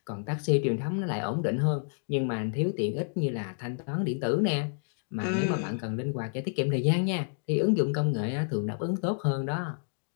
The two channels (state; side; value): silent; right; digital silence